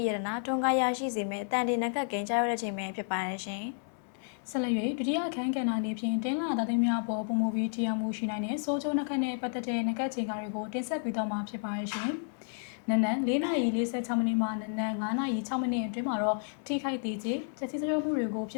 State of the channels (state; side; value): silent; right; 57 dB below the other